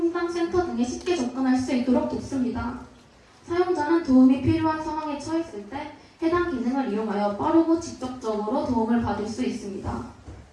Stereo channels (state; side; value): identical; both; correlation 1.00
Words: 등에 쉽게 접근할 수 있도록 돕습니다. 사용자는 도움이 필요한 상황에 처했을 때 해당 기능을 이용하여 빠르고 직접적으로 도움을 받을 수 있습니다.